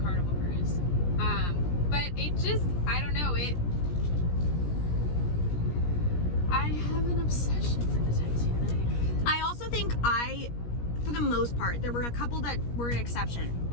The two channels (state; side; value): late; right; 17 ms